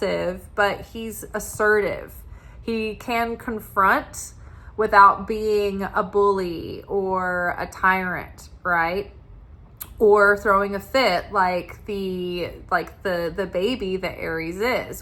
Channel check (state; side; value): identical; both; correlation 1.00